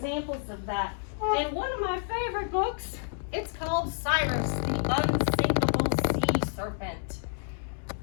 of that. In one of my favorite books, it's called Cyrus, the Unsinkable Sea Serpent.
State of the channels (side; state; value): right; silent; digital silence